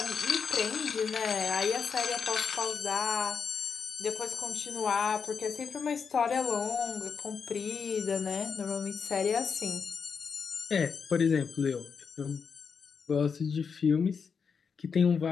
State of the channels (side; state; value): right; quieter; 6.0 dB